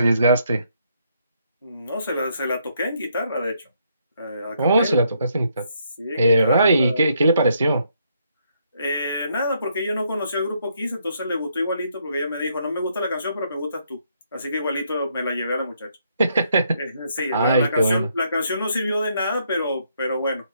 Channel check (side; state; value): both; inverted; correlation -0.73